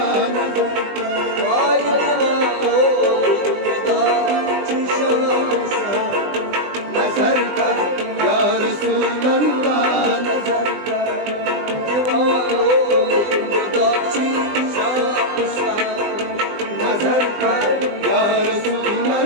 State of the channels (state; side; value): late; left; 20 ms